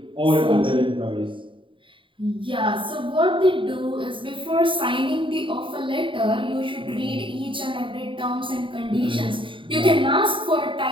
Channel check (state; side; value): late; left; 0.25 ms